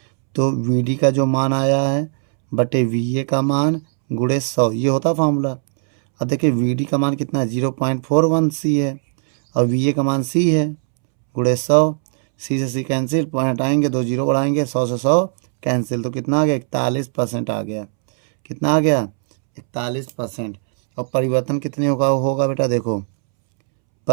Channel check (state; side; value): silent; left; 67 dB below the other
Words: तो VD का जो मान आया है बटे VA का मान गुणे 100, ये होता फार्मूला। अब देखिए VD का मान कितना है, 0.41 C है, और VA का मान C है, गुणे 100। C से C कैंसिल, पॉइंट आएंगे, 2 जीरो बढ़ाएंगे, 100 से 100 कैंसिल, तो कितना आ गया, 41% आ गया। कितना आ गया, 41%। और परिवर्तन कितने होगा बेटा, देखो